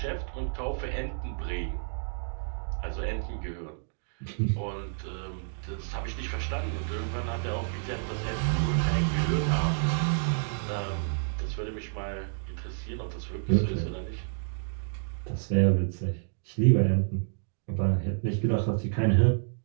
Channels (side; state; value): left; silent; digital silence